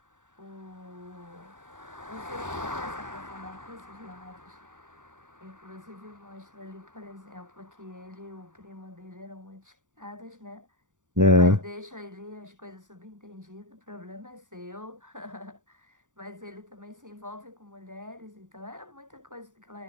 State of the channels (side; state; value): left; late; 0.86 ms